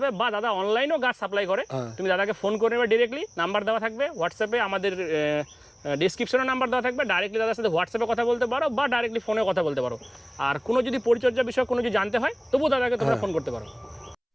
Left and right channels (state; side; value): identical; both; correlation 1.00